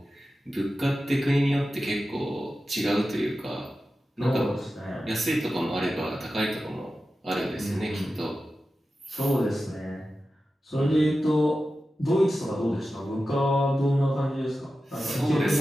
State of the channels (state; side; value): normal; both; correlation 0.93